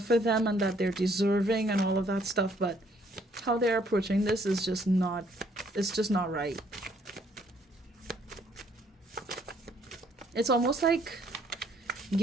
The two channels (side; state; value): both; normal; correlation 0.65